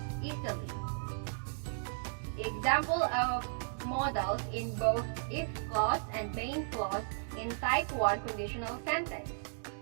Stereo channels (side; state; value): left; silent; digital silence